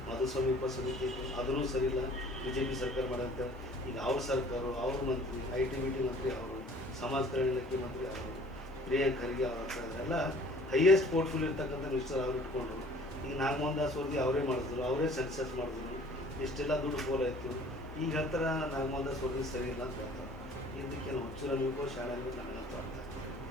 ಮಧುಸ್ವಾಮಿ ಉಪಸಮಿತಿ ಇತ್ತು, ಅದೂ ಸರಿ ಇಲ್ಲ, BJP ಸರ್ಕಾರ ಮಾಡೋಂತ. ಈಗ ಅವ್ರ ಸರ್ಕಾರ, ಅವ್ರ ಮಂತ್ರಿ, IT-BT ಮಂತ್ರಿ ಅವರು, ಸಮಾಜ ಕಲ್ಯಾಣ ಇಲಾಖೆ ಮಂತ್ರಿ ಅವರು, ಪ್ರಿಯಾಂಕ್ ಖರ್ಗೆ ಅವ್ರ ಎಲ್ಲ ಹೈಯೆಸ್ಟ್ ಪೋರ್ಟ್ಫೋಲಿಯೋ ಇರ್ತಕ್ಕಂಥ ಮಿನಿಸ್ಟರ್ ಅವ್ರು ಇಟ್ಕೊಂಡು ಈಗ ನಾಗಮೋಹನ್ ದಾಸ್ ವರದಿ ಅವರೇ ಮಾಡಿದ್ರು, ಅವರೇ ಸೆನ್ಸಸ್ ಮಾಡಿದ್ರು, ಇಷ್ಟೆಲ್ಲ ದುಡ್ಡು ಫೋಲ್ ಆಯಿತು. ಈಗ ಹೇಳ್ತಾರೆ ನಾಗಮೋಹನ್ ದಾಸ್ ವರದಿ ಸರಿ ಇಲ್ಲ ಅಂತ ಹೇಳ್ತಾರೆ. ಇದಕ್ಕೇನು ಹುಚ್ಚು ನಮಗೂ ಶಾಣೆ ನನಗಂತೂ ಅರ್ಥ ಆಗ್ತದೆ.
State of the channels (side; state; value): both; normal; correlation 0.51